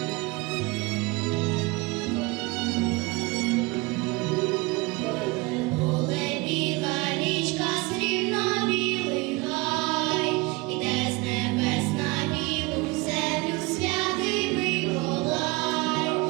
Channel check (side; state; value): left; quieter; 24.3 dB